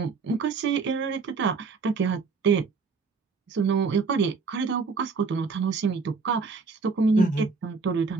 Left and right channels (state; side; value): quieter; left; 4.7 dB